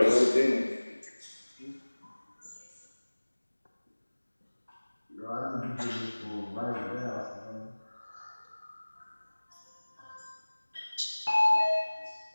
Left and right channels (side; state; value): both; inverted; correlation -1.00